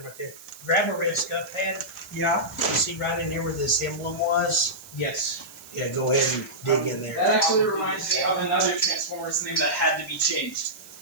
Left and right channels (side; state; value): right; noise; hiss, 19 dB below the sound